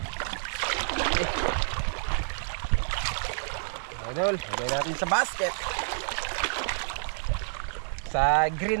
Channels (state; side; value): silent; left; digital silence